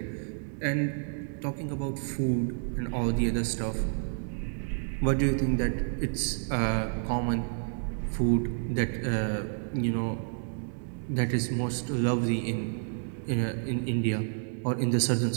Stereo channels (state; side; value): silent; left; 58 dB below the other